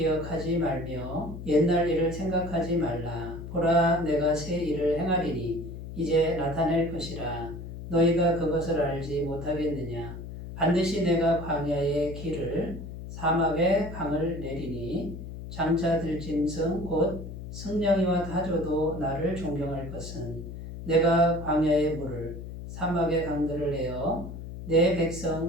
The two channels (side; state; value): left; noise; hum, 10 dB below the sound